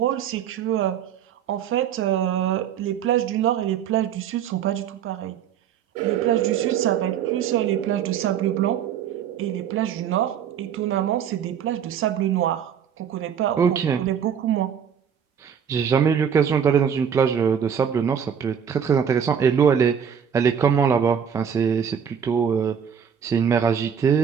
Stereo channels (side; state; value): left; quieter; 8.1 dB